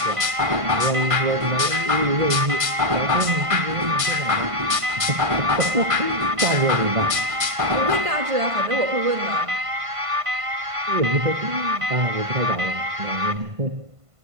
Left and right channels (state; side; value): late; left; 1.5 ms